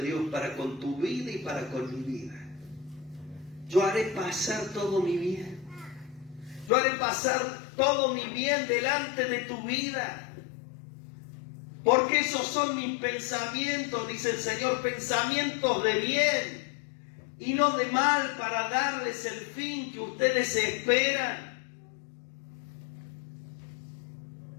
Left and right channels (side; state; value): right; drops out; at 6.7 s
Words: Dios para con tu vida y para con mi vida. Yo haré pasar todo mi bien. Yo haré pasar todo mi bien delante de tu vida. Porque esos son mis pensamientos, dice el Señor, pensamientos de bien y no de mal, para darles el fin que ustedes esperan.